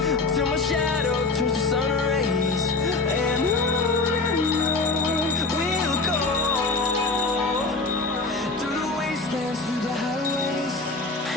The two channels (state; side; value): quieter; right; 3.6 dB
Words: till my shadow turns to sun rays, and on we'll go. Through the wastelands, through the highways,